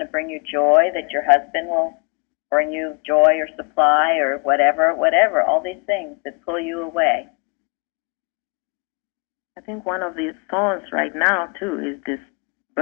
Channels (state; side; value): quieter; right; 33.8 dB